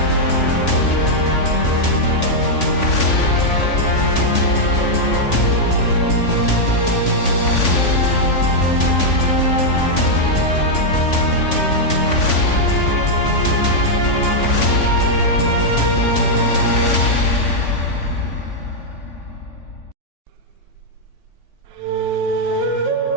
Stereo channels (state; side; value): late; right; 3.5 ms